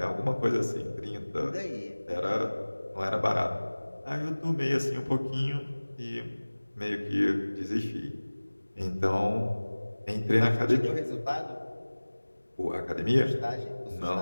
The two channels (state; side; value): inverted; both; correlation -1.00